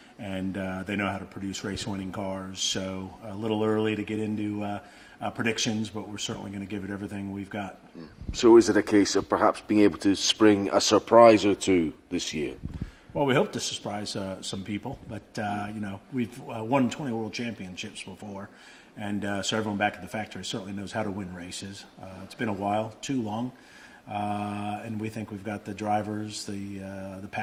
and they know how to produce race-winning cars. So a little early to get into predictions, but we're certainly going to give it everything we've got. So is it a case of perhaps being able to spring a surprise or two this year? Well, we hope to surprise some people, but we've won 20 world championships before, and so everyone back at the factory certainly knows how to win races. It's been a while, too long, and we think we've got the drivers, the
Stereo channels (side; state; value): both; identical; correlation 1.00